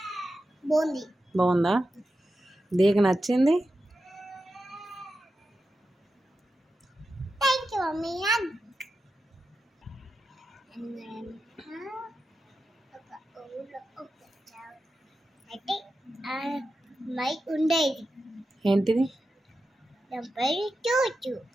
బాగుందా? దీనికి నచ్చింది? ఉండేది ఏంటిది?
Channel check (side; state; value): both; normal; correlation 0.90